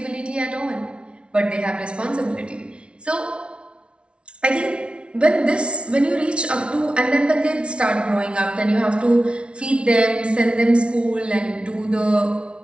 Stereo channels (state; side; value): late; left; 0.059 ms